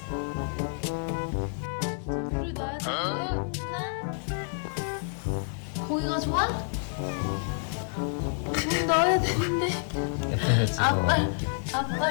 물을 넣어야 돼, 공순아? 고기가 좋아? 물 넣어야 되는데.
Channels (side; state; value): right; silent; 59 dB below the other